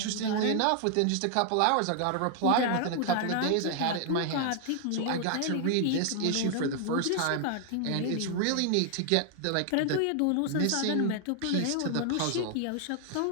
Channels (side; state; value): both; different; correlation 0.00